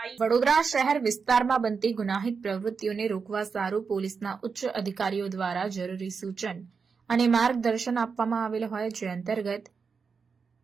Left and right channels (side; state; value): left; quieter; 5.4 dB